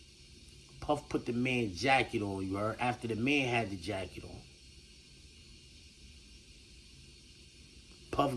Puff put the man's jacket on, you heard? After the man had the jacket on. Puff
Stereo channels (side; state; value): both; identical; correlation 1.00